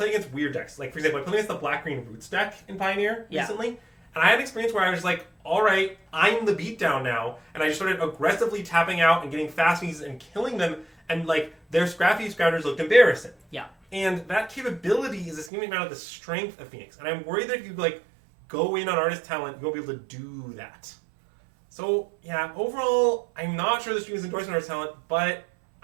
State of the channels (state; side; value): drops out; left; at 15.5 s